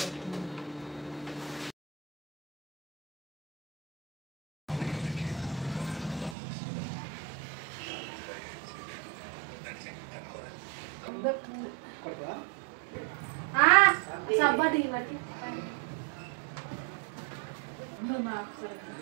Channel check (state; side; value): drops out; left; at 6.4 s